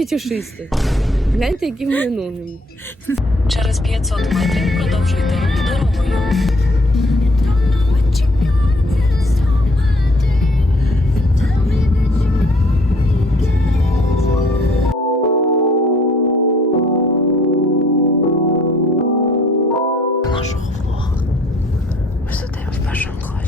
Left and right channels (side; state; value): both; normal; correlation 0.61